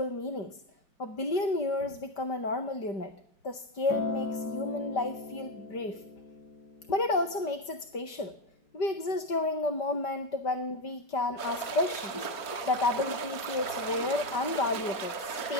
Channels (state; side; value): late; right; 5.1 ms